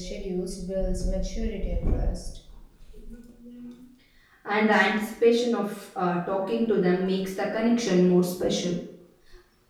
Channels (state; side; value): identical; both; correlation 1.00